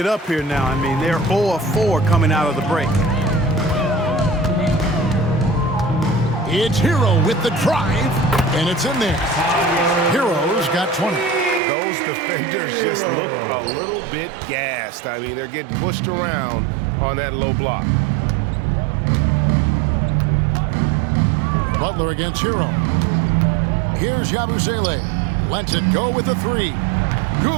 up here now. I mean, they're 0 of 4 coming out of the break. It's Hero with the drive, and it's in there. Hero's got 20. Those defenders just look a little bit gassed. I mean, they're getting pushed around on that low block. Butler against Hero. Here's Yabusele. Lets it go with the 3.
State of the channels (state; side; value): drops out; left; at 11.6 s